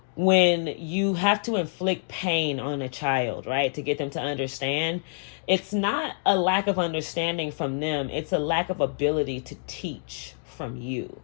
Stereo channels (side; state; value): right; silent; digital silence